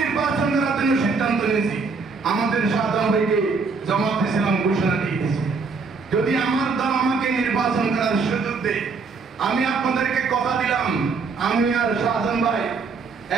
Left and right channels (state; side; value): quieter; left; 4.6 dB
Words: নির্বাচন করার জন্য সিদ্ধান্ত নিয়েছি, আমাদের সাধারণ ভাইকে জামাত ইসলাম ঘোষণা দিয়েছে, যদি আমার দল আমাকে নির্বাচন করার সুযোগ দেয়, আমি আপনাদেরকে কথা দিলাম, আমি আর শাহজাহান ভাই